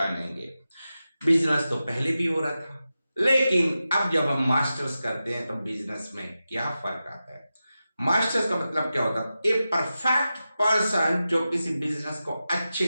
बिजनेस तो पहले भी हो रहा था, लेकिन अब जब हम मास्टर्स करते हैं तो बिजनेस में क्या फर्क आता है? मास्टर्स का मतलब क्या होता है? ए परफेक्ट पर्सन जो किसी बिजनेस को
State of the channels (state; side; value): inverted; both; correlation -0.92